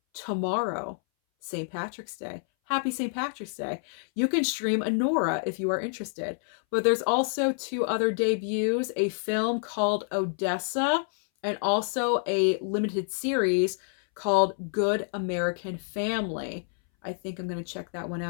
tomorrow, St. Patrick's Day. Happy St. Patrick's Day. You can stream Honora if you are interested. But there's also two other debuts, a film called Odessa and also a limited series called Good American Family. I think I'm going to check that one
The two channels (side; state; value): right; silent; 59 dB below the other